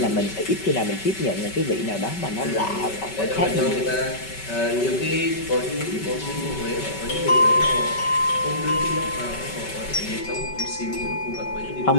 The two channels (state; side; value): late; right; 5.2 ms